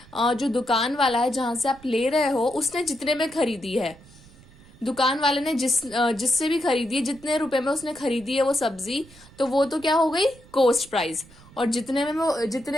जो दुकान वाला है जहां से आप ले रहे हो उसने जितने में खरीदी है, दुकान वाले ने जिससे भी खरीदी है जितने रुपए में उसने खरीदी है वो सब्जी, तो वो तो क्या हो गई कॉस्ट प्राइस. और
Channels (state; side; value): noise; right; rumble, 23 dB below the sound